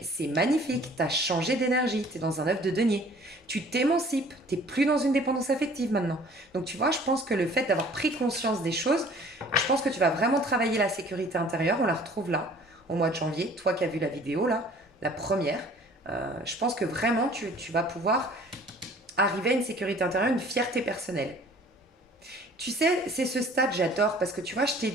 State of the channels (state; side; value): normal; both; correlation 0.51